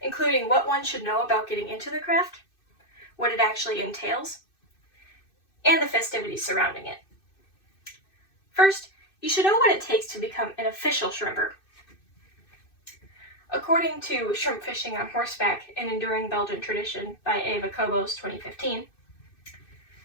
including what one should know about getting into the craft, what it actually entails, and the festivities surrounding it. First, you should know what it takes to become an official shrimper. According to Shrimp Fishing on Horseback, an Enduring Belgian Tradition by Eva Kobos 2015,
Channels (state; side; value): late; right; 2.6 ms